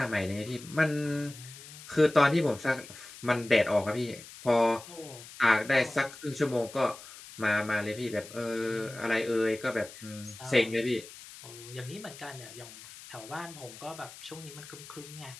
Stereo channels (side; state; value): left; noise; hiss, 16 dB below the sound